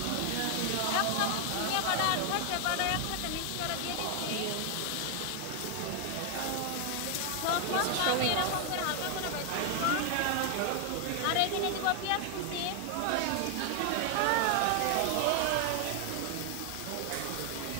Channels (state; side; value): different; both; correlation 0.00